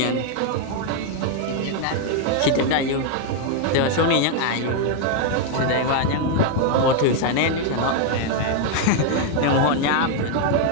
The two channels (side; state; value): both; different; correlation 0.00